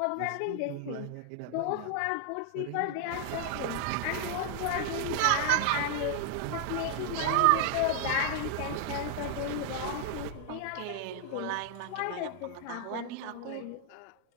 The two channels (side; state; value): both; different; correlation 0.00